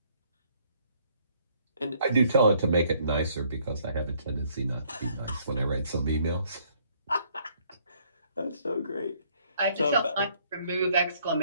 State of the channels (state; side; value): inverted; both; correlation -0.65